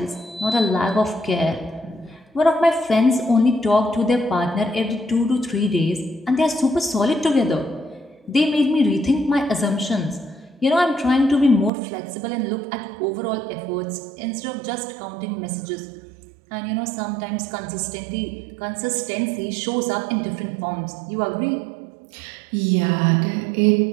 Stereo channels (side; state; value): left; drops out; at 11.7 s